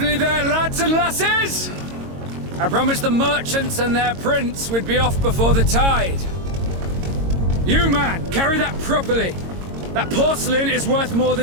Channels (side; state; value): left; late; 22 ms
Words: there, lads and lasses! I promised the merchants and their prince we'd be off before the tide. You, man, carry that properly. That porcelain is worth more